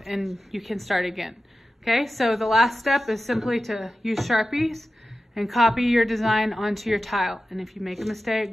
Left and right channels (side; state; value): both; normal; correlation 0.93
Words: and you can start again. Okay, so the last step is simply to use Sharpies and copy your design onto your tile. And if you make a